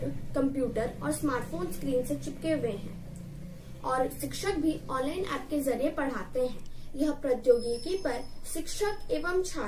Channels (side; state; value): both; identical; correlation 1.00